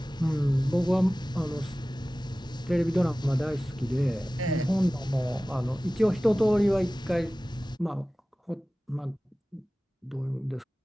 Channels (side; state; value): both; normal; correlation 0.97